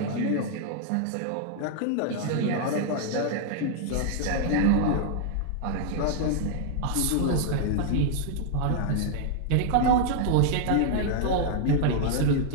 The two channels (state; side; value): different; both; correlation -0.01